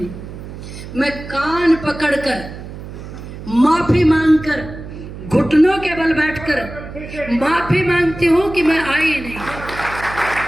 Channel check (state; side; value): noise; right; hum, 12 dB below the sound